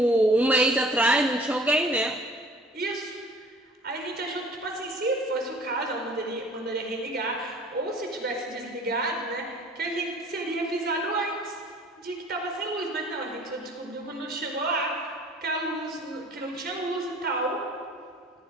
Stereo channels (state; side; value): normal; both; correlation 0.50